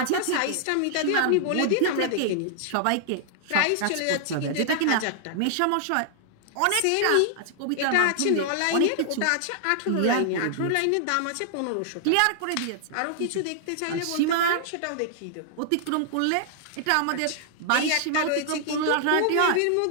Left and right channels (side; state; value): both; different; correlation -0.01